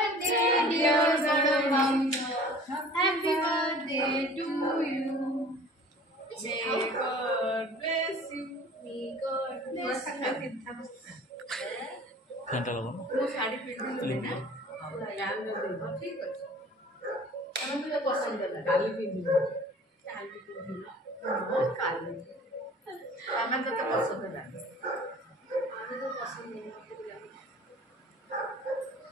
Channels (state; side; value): normal; both; correlation 0.46